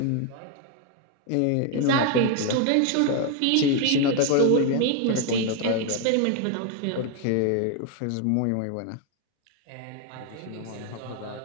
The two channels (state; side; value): different; both; correlation 0.01